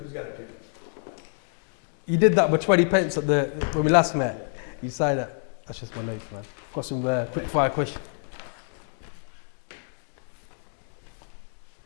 got a pen? You did that with 20 pence at when we last met. Yeah. You signed it. That's just my notes, man. Got some quick Thank fire questions.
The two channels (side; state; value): right; silent; 60 dB below the other